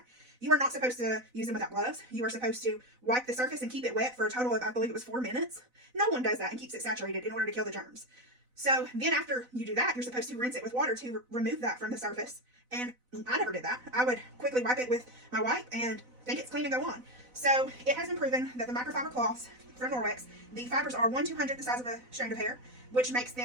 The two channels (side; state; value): left; late; 4.0 ms